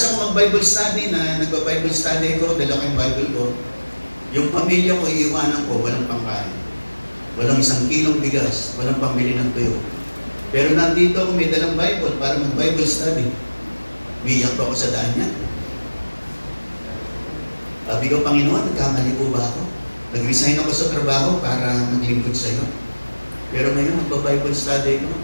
ko mag-Bible study na nagba-Bible study ko, dala ko yung Bible ko. Yung pamilya ko, iiwanan ko, walang pangkain. Walang 1 kilong bigas, walang pambili ng tuyo. Pero nandito ako, may dalang Bible para mag-Bible study. Umiyak pa ako sa daan niya. Sabi ko, Panginoon, nagkamali po ba ako? Nag-resign ako sa trabaho para maglingkod sa iyo. Pero ngayon, magba-Bible study ko.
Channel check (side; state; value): both; inverted; correlation -1.00